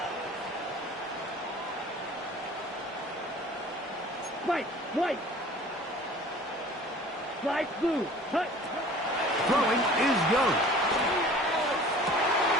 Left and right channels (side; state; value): both; normal; correlation 0.46